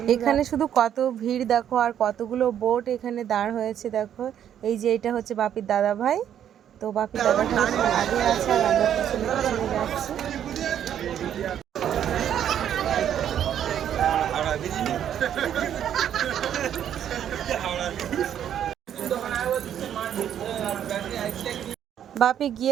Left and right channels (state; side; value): quieter; left; 9.8 dB